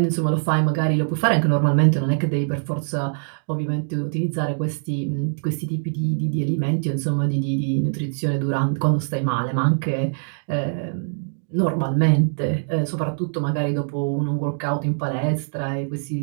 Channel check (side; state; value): left; silent; digital silence